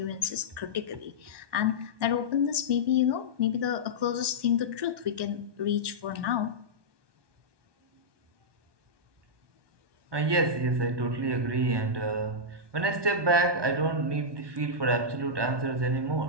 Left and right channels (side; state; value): left; late; 1.2 ms